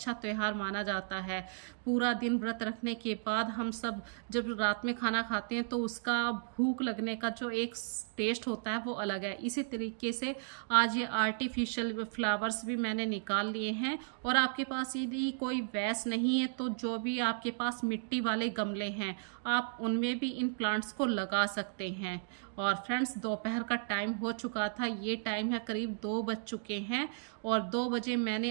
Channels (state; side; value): silent; left; digital silence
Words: त्यौहार माना जाता है। पूरा दिन व्रत रखने के बाद हम सब जब रात में खाना खाते हैं तो उसका भूख लगने का जो एक टेस्ट होता है वो अलग है। इसी तरीके से आज ये आर्टिफिशियल फ्लावर्स भी मैंने निकाल लिए हैं। और आपके पास यदि कोई वैस नहीं है तो जो भी आपके पास मिट्टी वाले गमले हैं आप उनमें भी इन प्लांट्स को लगा सकते हैं। और फ्रेंड्स, दोपहर का टाइम हो चुका था, ये टाइम है करीब 2 बज चुके हैं और 2 बजे मैंने